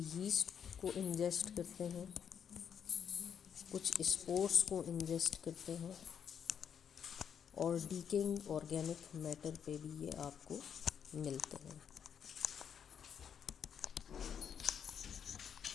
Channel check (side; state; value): right; quieter; 7.9 dB